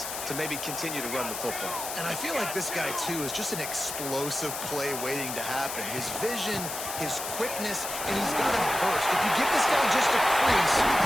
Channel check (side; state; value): left; noise; hiss, 6 dB below the sound